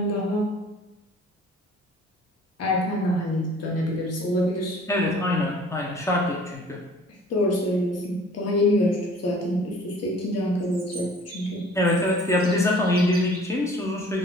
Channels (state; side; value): normal; both; correlation 0.51